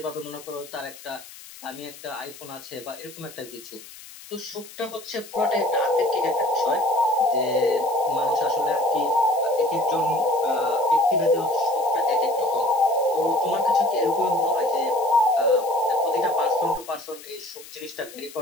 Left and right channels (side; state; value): left; noise; hiss, 18 dB below the sound